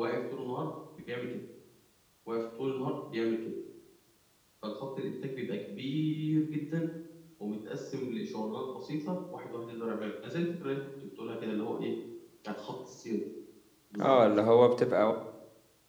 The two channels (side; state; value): both; identical; correlation 1.00